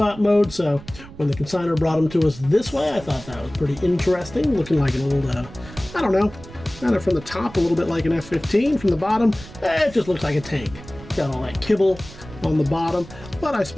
mode. So when the consignor brought them to us this way, I thought that was pretty interesting. Looking like an old, I don't know, kind of from the top, a little bit like an F-15. From the bottom, it just looks like a tank. Got all that kibble on the bottom. But I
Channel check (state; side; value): noise; right; rumble, 17 dB below the sound